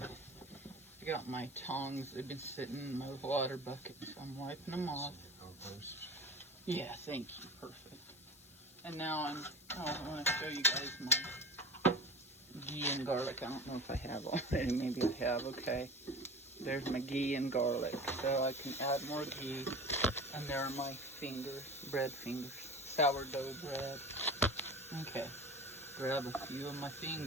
I got my tongs. They've been sitting in my water bucket, so I'm wiping them off. Compost. Yeah, thank you. Perfect. And now I want to show you guys my ghee and garlic. I don't know if I have already. Maybe I have. Okay. There's my ghee and garlic. So I can add more ghee. And there are my fingers, bread fingers, sourdough bread. Okay. Grab a few of my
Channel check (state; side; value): noise; left; hiss, 23 dB below the sound